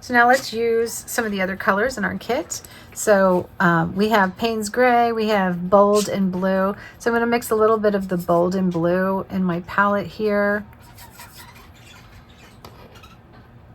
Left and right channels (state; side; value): identical; both; correlation 1.00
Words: now let's use some of the other colors in our kit. So we have Payne's Gray, we have Bold and Blue. So I'm going to mix a little bit of the Bold and Blue in my palette here.